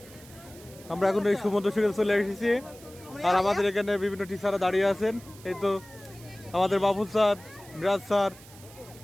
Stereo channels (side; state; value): right; noise; hiss, 21 dB below the sound